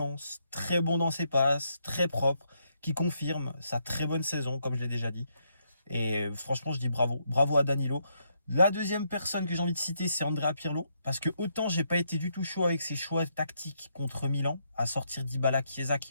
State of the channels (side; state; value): both; inverted; correlation -0.77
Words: très bon dans ses passes, très propre, qui confirme sa très bonne saison, comme je l'ai déjà dit. Et franchement, je dis bravo. Bravo à Danilo. La deuxième personne que j'ai envie de citer, c'est Andrea Pirlo. Parce que autant j'ai pas été du tout chaud avec ses choix tactiques contre Milan, à sortir Dybala, Chiesa